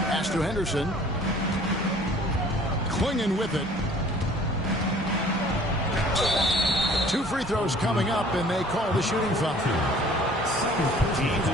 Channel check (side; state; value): both; normal; correlation 0.52